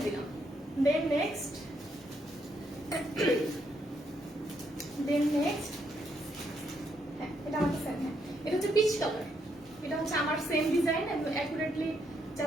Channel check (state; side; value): normal; both; correlation 0.76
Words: দিলাম। দেন নেক্সট হ্যাঁ, এটা আমার সেম। হ্যাঁ, এটা হচ্ছে পিচ কালার। এটা হচ্ছে আমার সেম ডিজাইন, একদম অ্যাকুরেটলি